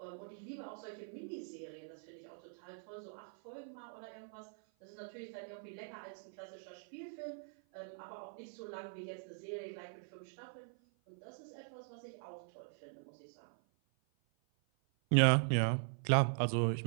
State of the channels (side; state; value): left; silent; 50 dB below the other